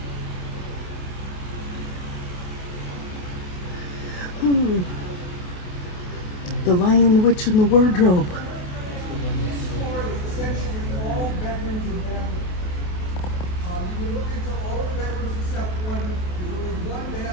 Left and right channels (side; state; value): right; late; 28 ms